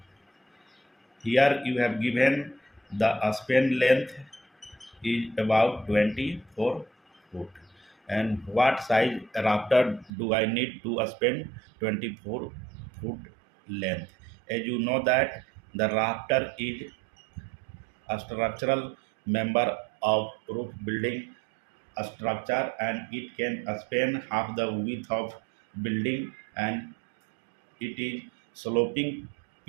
Here you have given the span length is about 24 foot. And what size rafter do I need to span 24 foot length? As you know that the rafter is a structural member of roof building structure, and it can span half the width of building, and it is sloping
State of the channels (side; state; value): left; drops out; at 10.1 s